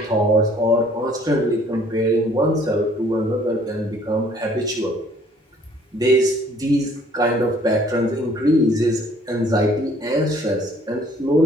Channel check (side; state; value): both; normal; correlation 0.58